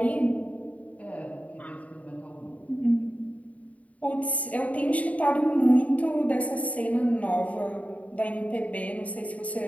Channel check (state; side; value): late; right; 0.068 ms